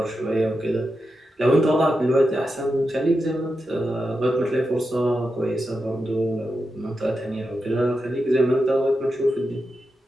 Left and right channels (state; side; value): normal; both; correlation 0.88